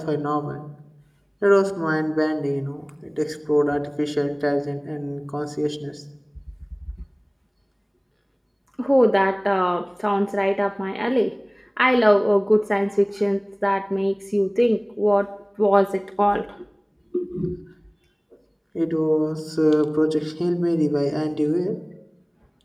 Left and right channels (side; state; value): both; identical; correlation 1.00